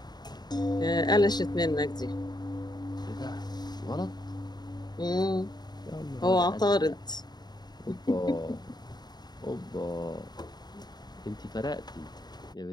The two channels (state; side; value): late; right; 0.20 ms